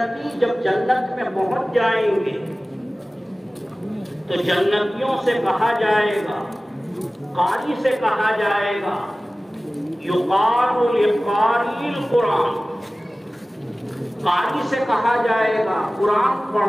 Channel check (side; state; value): both; normal; correlation 0.97